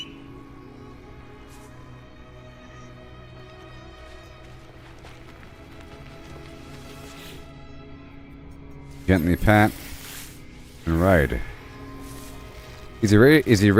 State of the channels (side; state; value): both; identical; correlation 1.00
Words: Gently pat and ride. Is he